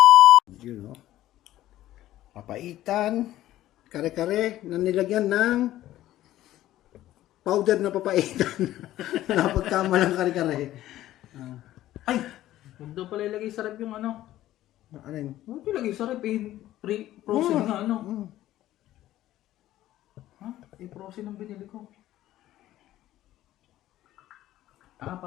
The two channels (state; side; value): quieter; right; 14.2 dB